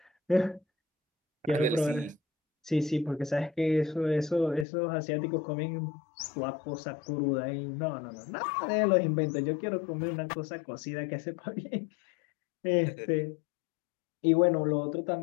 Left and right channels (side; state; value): right; drops out; at 4.7 s